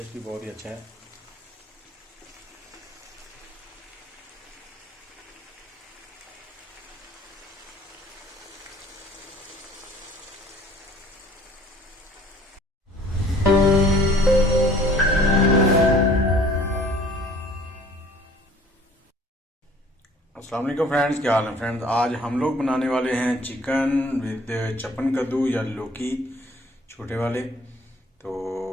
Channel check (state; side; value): normal; both; correlation 0.52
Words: भी बहुत ही अच्छा है। अस्सलाम वालेकुम फ्रेंड्स, क्या हाल है फ्रेंड्स। आज हम लोग बनाने वाले हैं चिकन विद चपन कद्दू या लौकी छोटे वाले। तो